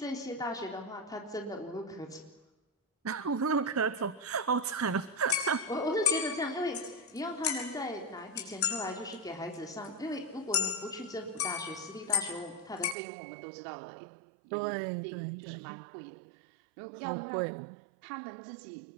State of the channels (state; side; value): drops out; left; at 13.0 s